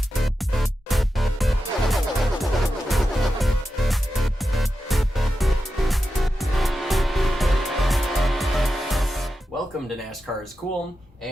Welcome to NASCAR's Cooln,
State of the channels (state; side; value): normal; both; correlation 0.90